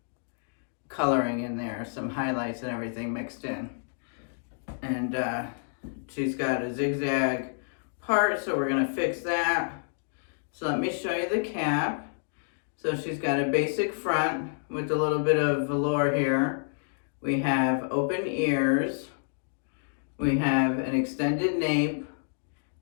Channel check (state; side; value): silent; right; digital silence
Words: coloring in there, some highlights and everything mixed in. And she's got a zigzag part, so we're gonna fix that. So let me show you the cap. So she's got a basic front with a little bit of velour here. We have open ears. We have an extended nape